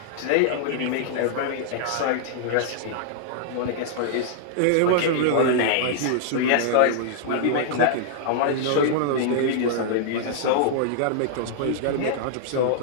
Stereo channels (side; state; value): both; different; correlation -0.01